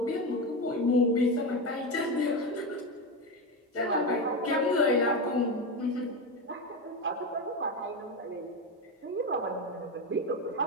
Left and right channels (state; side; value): normal; both; correlation 0.15